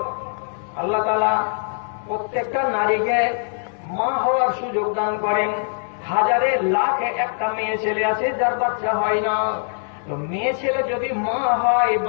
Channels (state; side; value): silent; right; 64 dB below the other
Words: আল্লাহ তাআলা প্রত্যেকটা নারীকে মা হওয়ার সুযোগ দান করেন। হাজারে লাখে একটা মেয়ে ছেলে আছে যার বাচ্চা হয় না। তো মেয়ে ছেলে যদি মা হয়,